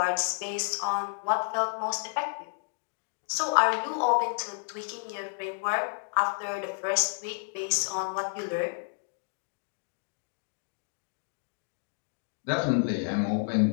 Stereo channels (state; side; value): silent; right; digital silence